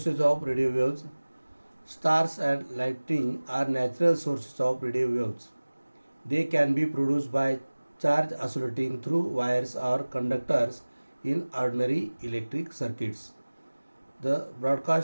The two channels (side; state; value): both; inverted; correlation -1.00